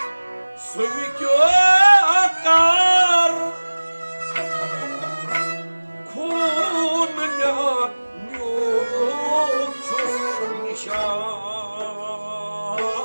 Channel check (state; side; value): inverted; both; correlation -1.00